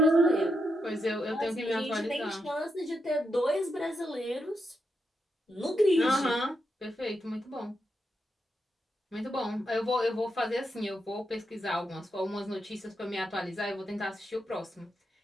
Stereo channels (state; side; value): normal; both; correlation 0.83